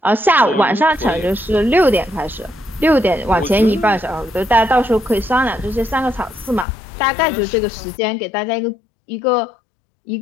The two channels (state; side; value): drops out; right; at 6.7 s